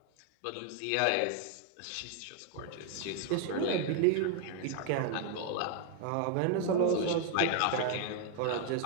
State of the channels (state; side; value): different; both; correlation 0.00